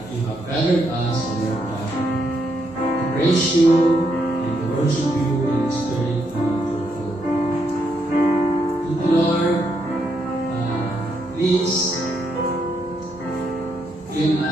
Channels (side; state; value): both; normal; correlation 0.78